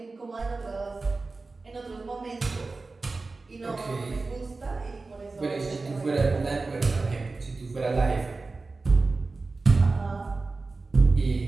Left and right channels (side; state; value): left; quieter; 3.7 dB